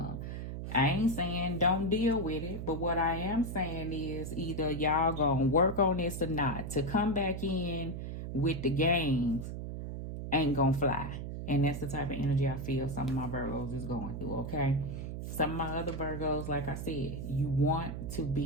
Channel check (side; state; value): right; noise; hum, 6 dB below the sound